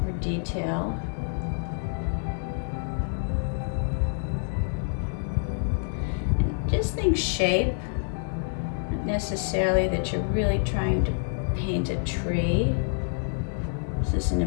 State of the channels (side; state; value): right; silent; digital silence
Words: or detail. And just think shape, not necessarily that you're really trying to paint a tree. This is an